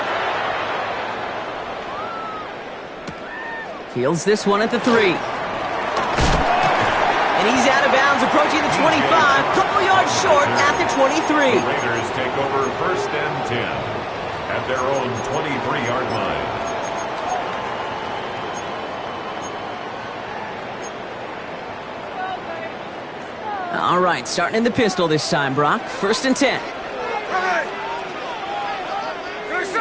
Fields this one at the 3. And he's out of bounds, approaching the 25. Couple yards short at the 23. The Raiders take over 1st and 10 at their own 23-yard line. All right, starting in the pistol this time, Brock. 1st and 10.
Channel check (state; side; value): identical; both; correlation 1.00